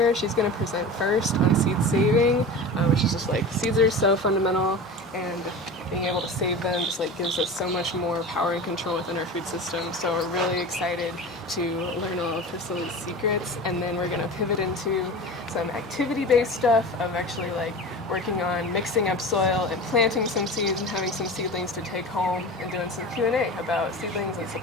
She's going to present first on seed saving, which is just like seeds are so fundamental, and being able to save them just like gives us so much more power and control within our food system. So we're really excited to learn all of Priscilla's secrets, and then we're going to pivot into some activity-based stuff of actually like working on mixing up soil and planting some seeds and having some seedlings to take home and doing some Q&A about seedlings and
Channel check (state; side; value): normal; both; correlation 0.32